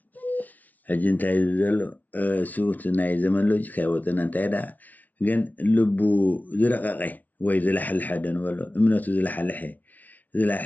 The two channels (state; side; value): late; right; 0.076 ms